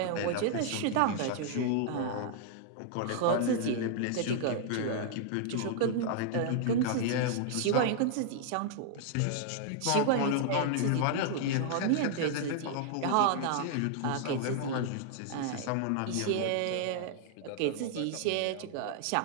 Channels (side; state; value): both; different; correlation -0.01